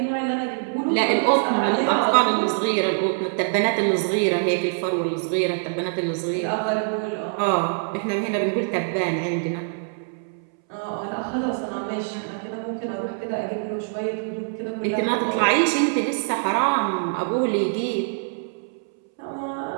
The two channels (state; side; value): silent; left; 63 dB below the other